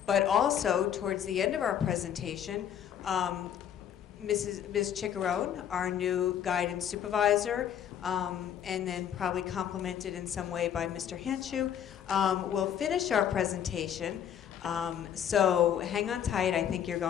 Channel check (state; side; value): quieter; right; 9.4 dB